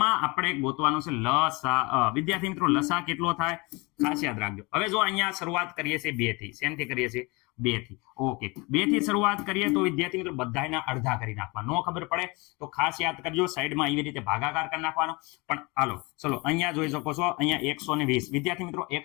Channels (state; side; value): quieter; right; 26.4 dB